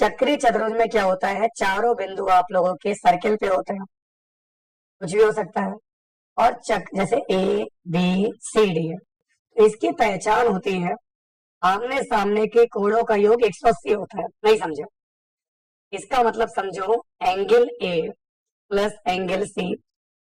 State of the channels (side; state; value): both; identical; correlation 1.00